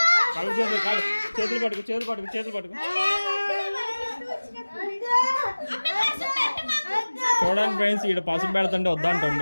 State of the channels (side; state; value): both; inverted; correlation -1.00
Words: చేతులు పట్టుకు. చూడండి ఫ్రెండ్స్, ఈడ పసుపు పెడుతుంటే